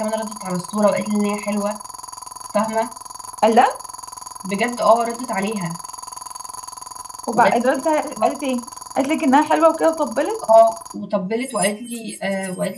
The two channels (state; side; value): identical; both; correlation 1.00